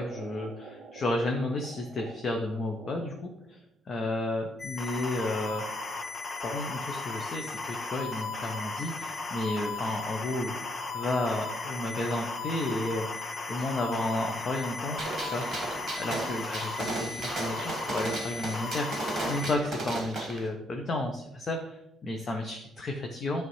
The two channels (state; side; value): normal; both; correlation 0.73